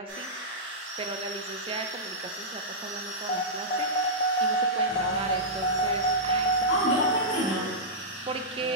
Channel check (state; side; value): normal; both; correlation -0.12